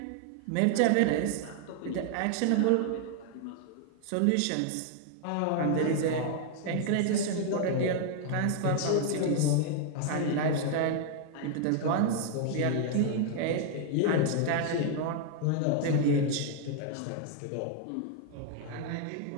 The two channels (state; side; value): different; both; correlation 0.00